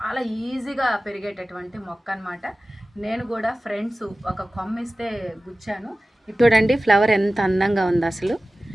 ఈజీగా పెరిగేటటువంటి మొక్క అనమాట. నేను కూడా ఫ్రెండ్స్ ఒక కొమ్మ ఇస్తే గుచ్చాను. చూడండి ఫ్లవర్ ఎంత అందంగా ఉంది, అసలు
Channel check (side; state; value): both; normal; correlation 0.96